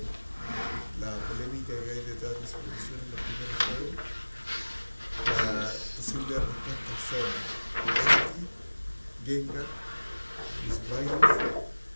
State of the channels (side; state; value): both; inverted; correlation -1.00